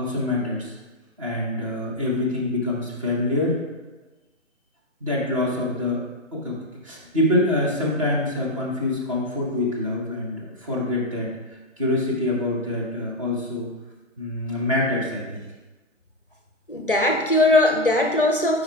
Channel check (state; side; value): normal; both; correlation 0.05